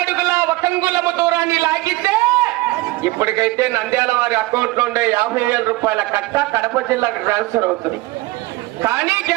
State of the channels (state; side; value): quieter; left; 20.3 dB